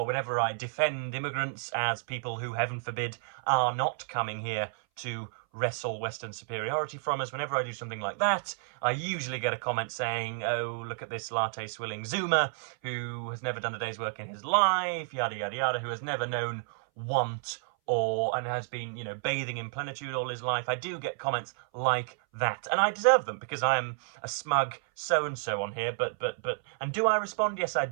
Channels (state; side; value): silent; left; 57 dB below the other